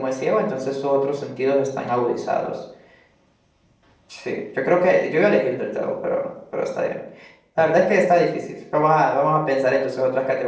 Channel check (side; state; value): both; identical; correlation 1.00